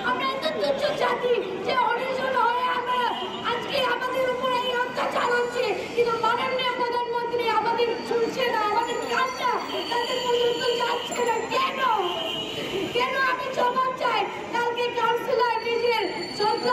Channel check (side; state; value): both; identical; correlation 1.00